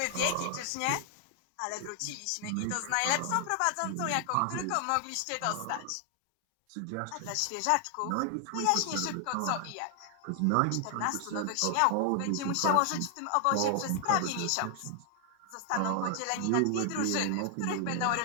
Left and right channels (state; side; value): different; both; correlation 0.00